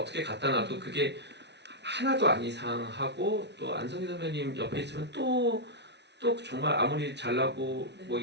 갖다 놔도 그게 하나도 안 이상하고 또 안성기 선배님 옆에 있으면 또 정말 아무리 잘나고 뭐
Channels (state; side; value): late; left; 0.50 ms